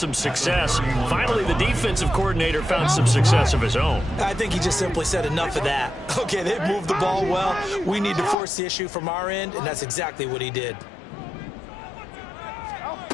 success. Finally, the defensive coordinator found some success of his own. I think he just simply said enough of that. Okay, they've moved the ball well. We need to force the issue from our end, and that's exactly what he did.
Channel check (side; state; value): right; drops out; at 8.3 s